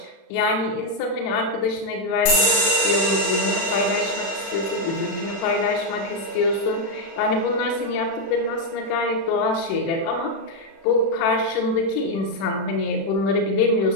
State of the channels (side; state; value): right; late; 36 ms